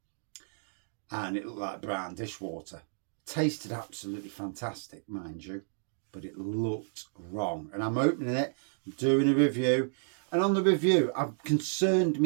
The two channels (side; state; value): left; silent; digital silence